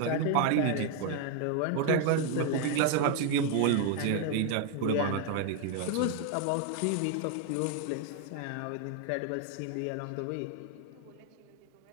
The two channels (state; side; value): different; both; correlation 0.01